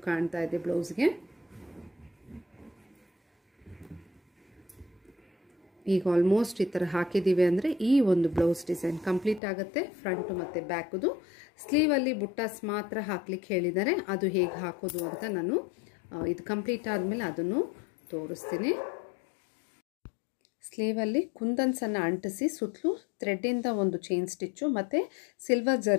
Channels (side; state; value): right; drops out; at 9.4 s